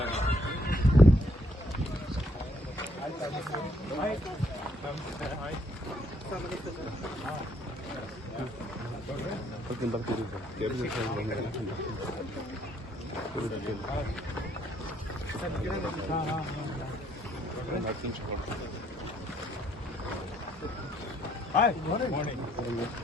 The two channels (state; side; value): normal; both; correlation 0.68